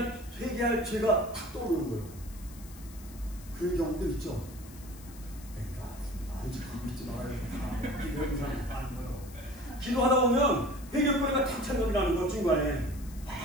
죄가 탁 떠오르는 거예요. 그런 경우도 있죠. 그러니까 아니지, 믿지 말아야 기도하는 사람이 많은 거예요. 기도하다 보면 회개거리가 탁 생각이 나는 거 중간에.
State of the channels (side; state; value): left; noise; hiss, 20 dB below the sound